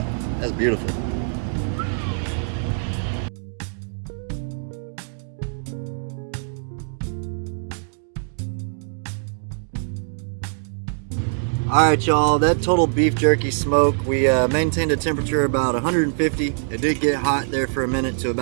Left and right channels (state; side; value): silent; left; digital silence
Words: That's beautiful. Alright y'all, that total beef jerky smoke, we maintained a temperature about 150. It did get hot there for a minute to